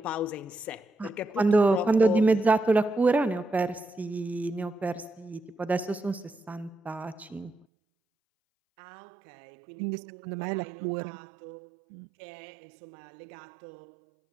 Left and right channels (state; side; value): drops out; left; at 7.7 s